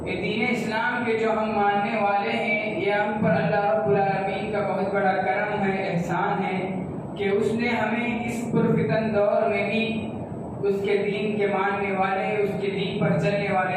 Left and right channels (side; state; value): both; identical; correlation 1.00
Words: یہ دین اسلام کے جو ہم ماننے والے ہیں، یہ ہم پر اللہ رب العالمین کا بہت بڑا کرم ہے، احسان ہے کہ اس نے ہمیں اس پرفتن دور میں بھی اس کے دین کے ماننے والے، اس کے دین پر چلنے